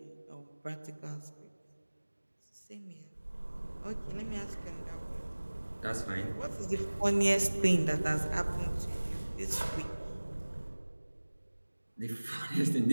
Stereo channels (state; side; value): inverted; both; correlation -1.00